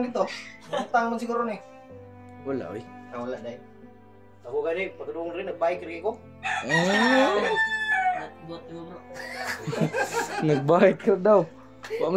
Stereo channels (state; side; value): identical; both; correlation 1.00